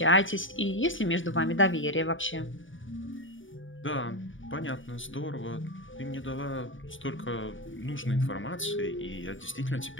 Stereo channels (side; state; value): right; late; 0.57 ms